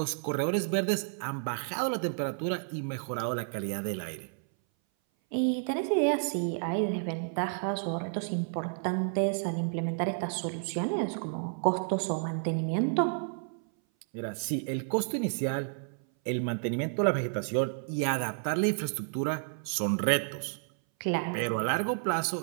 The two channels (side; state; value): left; silent; 57 dB below the other